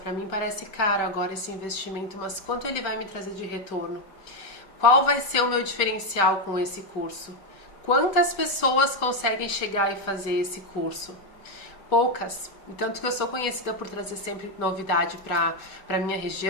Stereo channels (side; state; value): right; late; 5.2 ms